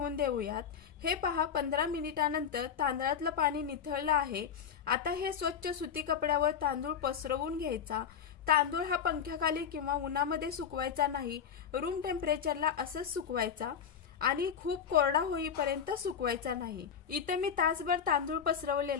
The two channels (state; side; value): quieter; right; 7.7 dB